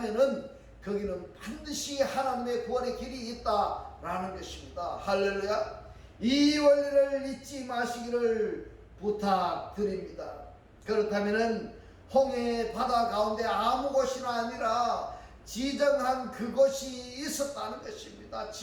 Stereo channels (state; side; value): identical; both; correlation 1.00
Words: 거기는 반드시 하나님의 구원의 길이 있다라는 것입니다. 할렐루야. 이 원리를 잊지 마시기를 부탁드립니다. 그렇다면은 홍해 바다 가운데 아무 곳이나 아니라 지정한 그곳이 있었다는 것입니다.